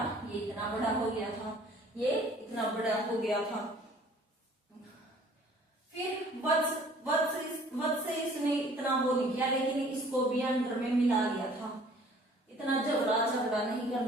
था? ये इतना बड़ा हो गया था। फिर वत्स से इसने इतना वो नहीं किया, लेकिन इसको भी अंडर में मिला लिया था। इतना झगड़ा नहीं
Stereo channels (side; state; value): both; normal; correlation 0.54